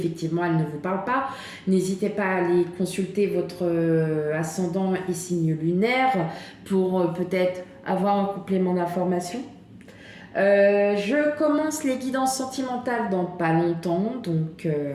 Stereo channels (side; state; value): both; identical; correlation 1.00